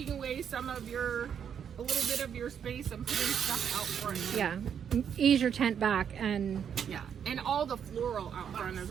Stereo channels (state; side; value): quieter; left; 8.1 dB